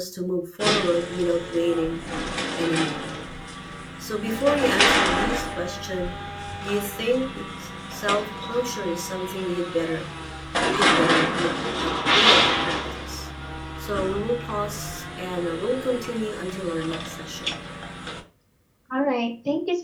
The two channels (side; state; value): both; identical; correlation 1.00